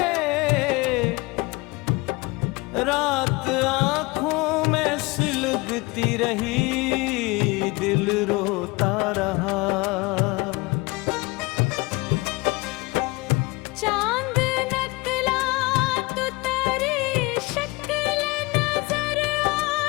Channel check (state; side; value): quieter; right; 24.0 dB